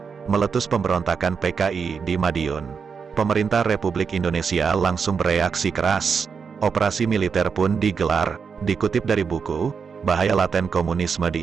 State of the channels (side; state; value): left; quieter; 5.9 dB